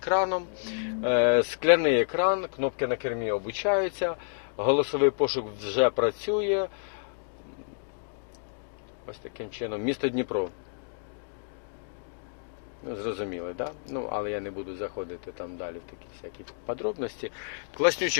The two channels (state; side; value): silent; right; digital silence